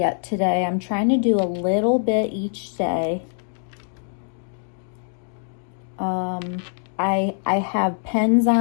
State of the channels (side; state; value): right; silent; digital silence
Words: today. I'm trying to do a little bit each day. I have pens